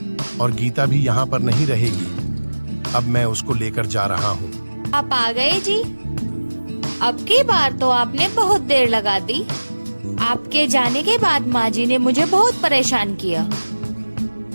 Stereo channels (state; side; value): inverted; both; correlation -1.00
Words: और गीता भी यहाँ पर नहीं रहेगी। अब मैं उसको लेकर जा रहा हूँ। आप आ गए जी। अब की बार तो आपने बहुत देर लगा दी। आपके जाने के बाद माँ जी ने मुझे बहुत परेशान किया।